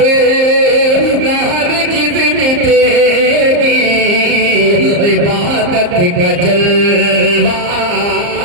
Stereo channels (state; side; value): late; left; 34 ms